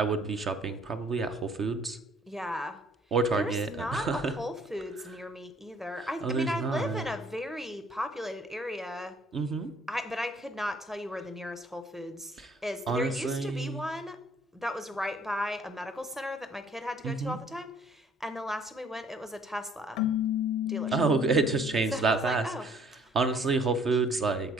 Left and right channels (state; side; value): normal; both; correlation 0.59